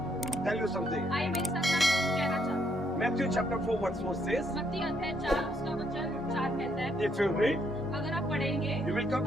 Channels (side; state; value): both; normal; correlation 0.72